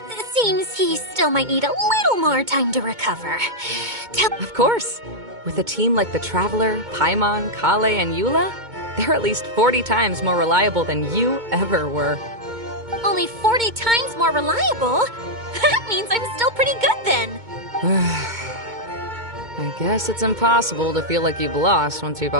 Seems he still might need a little more time to recover. Of course. With a team like the Traveler, Paimon, Kale, and Eula, they're at least 40 times more reliable than you ever were. Only 40 times more reliable? That means I'm still pretty good then. I guess it's impossible to feel like you've lost once you've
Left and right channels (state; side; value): late; left; 2.2 ms